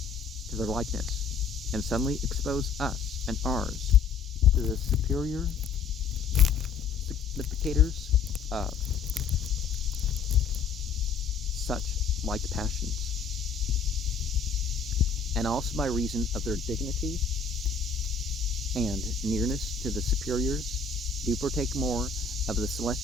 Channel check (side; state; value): right; quieter; 5.4 dB